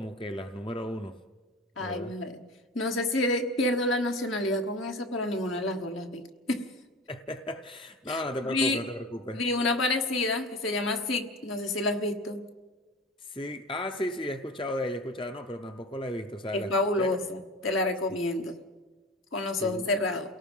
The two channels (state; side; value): normal; both; correlation 0.33